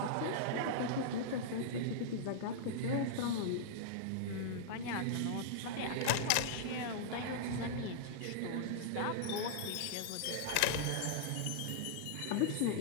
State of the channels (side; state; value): both; different; correlation -0.02